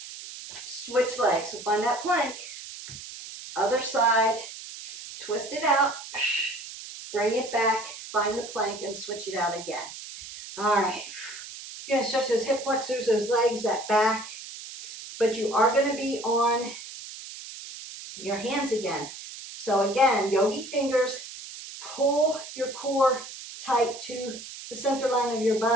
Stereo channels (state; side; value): noise; right; hiss, 12 dB below the sound